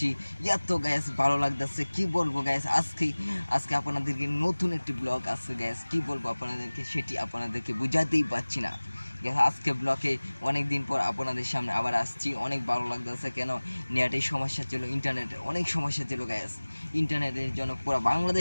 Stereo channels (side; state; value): both; inverted; correlation -1.00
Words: এত গ্যাস ভালো লাগতেছে কি বলবো। গ্যাস আজকে আপনাদেরকে নতুন একটি ব্লগ আসছে। গ্যাস কি বলবো আপনাদেরকে, সেটি আপনাদেরকে বোঝাতেই পারছি না। আজকে ব্লকে অনেক দিন পর আপনাদের সামনে আবার আসছি। অনেক ভালো লাগতেছে। কেন, নেটের সমস্যা ছিল, ইন্টারনেটের অনেক সমস্যা ছিল। গ্যাস ইন্টারনেটের জন্য পুরো